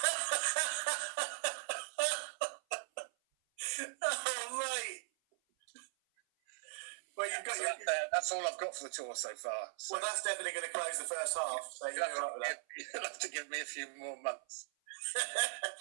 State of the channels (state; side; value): silent; left; 52 dB below the other